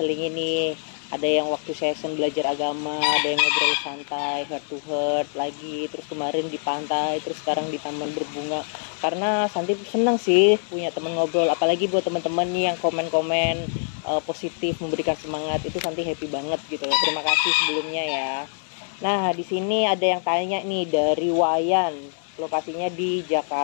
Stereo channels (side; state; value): right; silent; digital silence